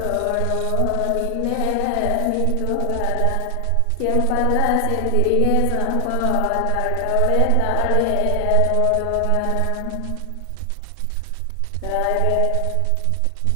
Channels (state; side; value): different; both; correlation 0.00